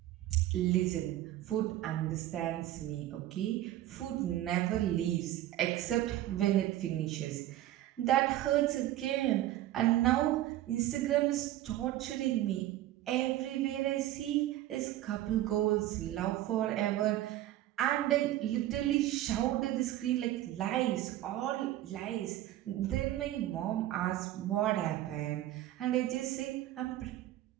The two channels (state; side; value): quieter; left; 14.0 dB